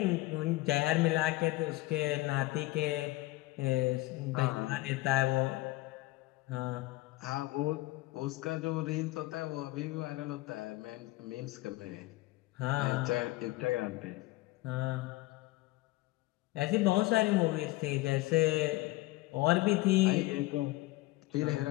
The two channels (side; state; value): right; quieter; 19.4 dB